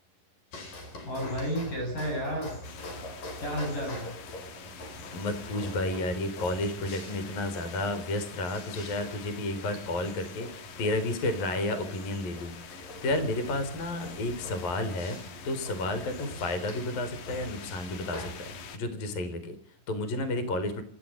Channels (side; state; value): right; late; 11 ms